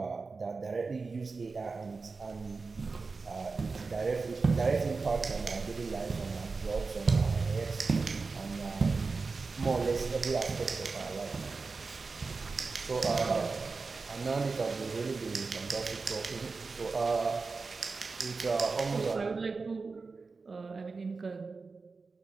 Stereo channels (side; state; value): left; quieter; 4.3 dB